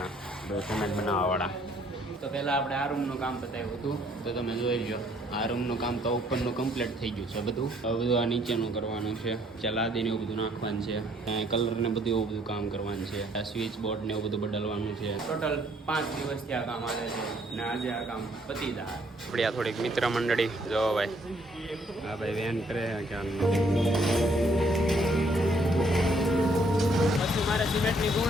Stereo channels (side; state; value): both; normal; correlation 0.65